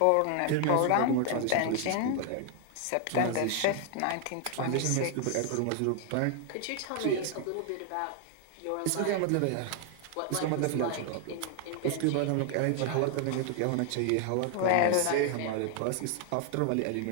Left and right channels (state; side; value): different; both; correlation 0.00